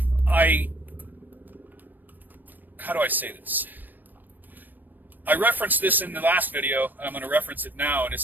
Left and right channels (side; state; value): left; late; 0.089 ms